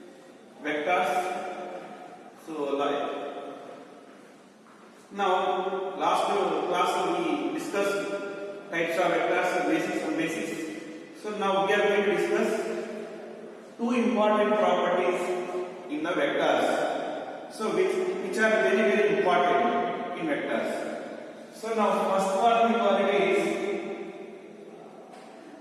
vectors. So like now last class we discussed types of vectors, basics and basics. So now we are going to discuss two important properties in the vectors. So which are very important in vectors. So now first one we call it is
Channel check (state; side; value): identical; both; correlation 1.00